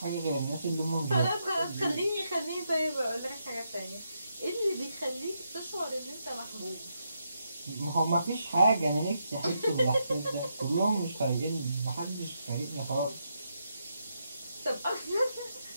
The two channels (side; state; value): both; inverted; correlation -0.81